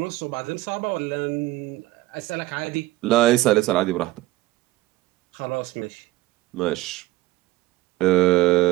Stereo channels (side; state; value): left; quieter; 18.0 dB